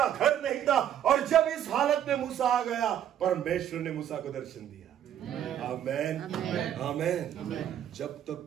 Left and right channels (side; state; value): left; quieter; 10.4 dB